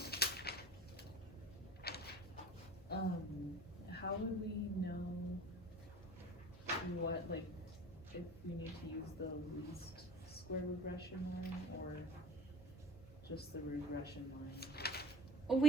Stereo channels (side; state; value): both; normal; correlation 0.41